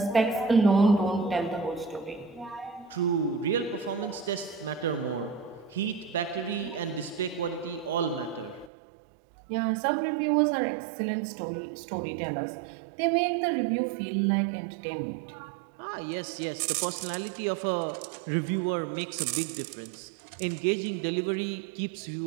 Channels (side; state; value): left; drops out; at 8.7 s